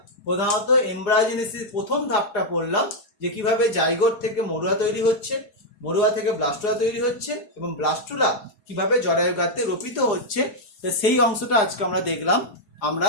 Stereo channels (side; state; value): right; late; 4.5 ms